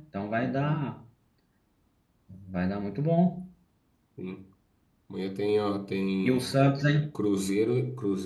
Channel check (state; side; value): identical; both; correlation 1.00